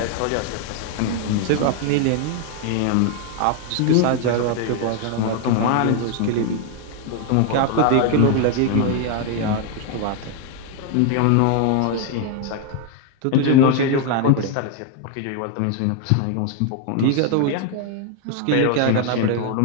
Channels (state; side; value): different; both; correlation 0.01